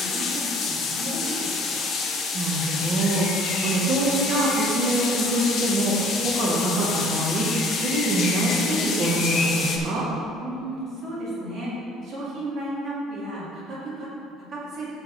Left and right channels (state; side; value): normal; both; correlation 0.54